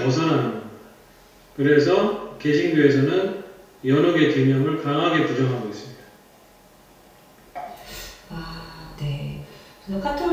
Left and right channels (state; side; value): identical; both; correlation 1.00